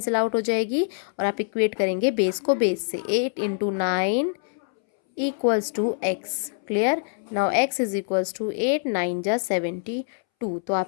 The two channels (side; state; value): right; silent; 62 dB below the other